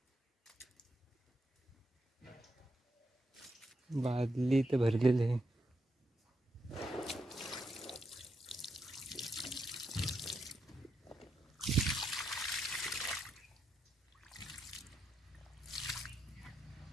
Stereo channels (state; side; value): normal; both; correlation 0.82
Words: बादली तर भरलेली आहे.